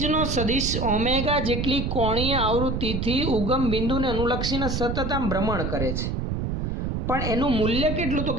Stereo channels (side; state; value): right; noise; rumble, 1 dB below the sound